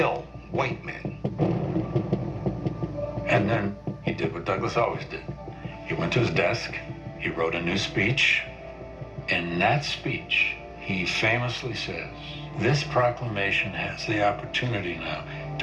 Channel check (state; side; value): identical; both; correlation 1.00